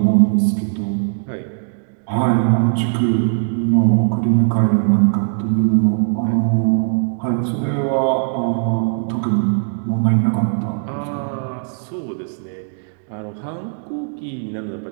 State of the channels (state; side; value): silent; left; digital silence